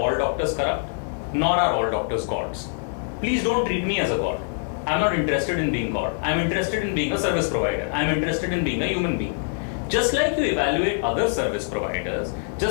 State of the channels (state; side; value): silent; right; 56 dB below the other